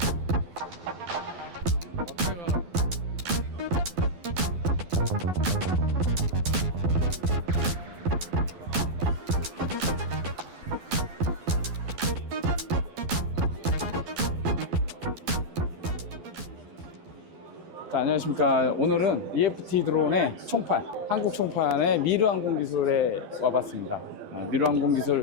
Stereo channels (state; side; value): late; left; 12 ms